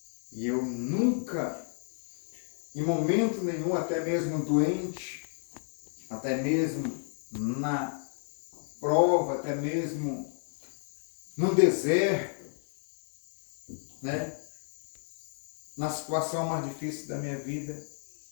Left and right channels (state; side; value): silent; right; 57 dB below the other